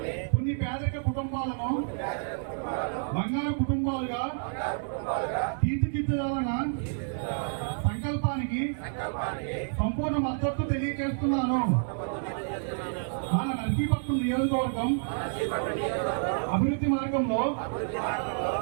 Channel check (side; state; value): left; silent; digital silence